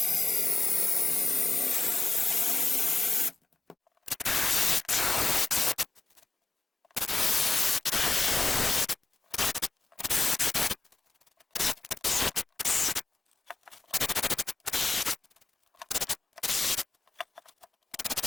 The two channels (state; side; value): quieter; right; 3.7 dB